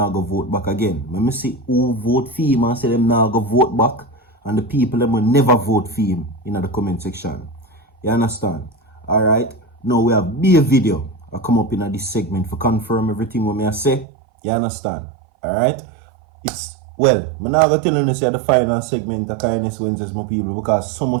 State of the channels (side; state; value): left; drops out; at 14.1 s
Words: going to vote back again. Let me see who vote for him and say them not going to vote back, and the people them will never vote for him in the comment section. You understand? Alright, now we have be a video I come up in this segment for confirm everything what I say. You understand? Alright? It's well, I'm not going to tell you say the final segment of Kindness Wednesdays, my people, because so